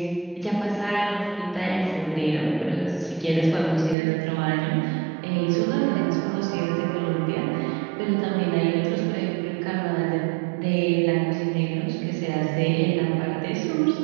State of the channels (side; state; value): left; drops out; at 4.0 s